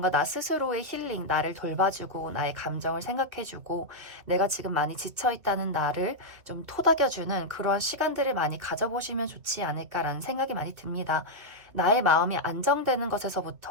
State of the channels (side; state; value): left; late; 2.5 ms